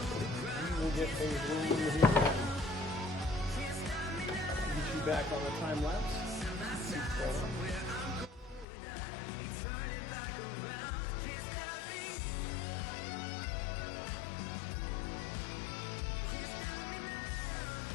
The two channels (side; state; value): right; drops out; at 8.7 s